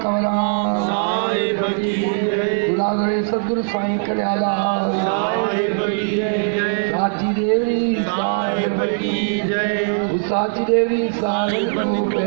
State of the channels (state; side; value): silent; left; 59 dB below the other